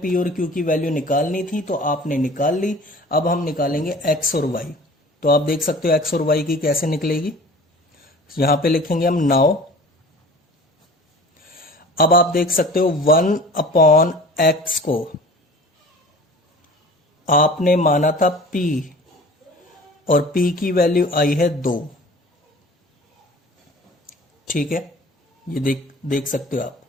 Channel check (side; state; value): both; normal; correlation 0.44